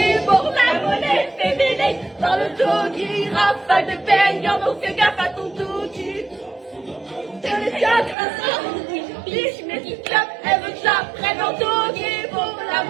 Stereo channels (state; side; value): drops out; left; at 8.2 s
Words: Pour la monnaie féminine, dans le doggy, rafale de baignant, donc fais gaffe à ton doggy. Biche, mais tu clap, elle veut que j'apprenne en doggy pour la